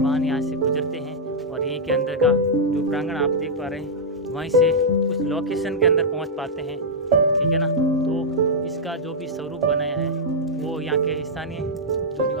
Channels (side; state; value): both; normal; correlation -0.07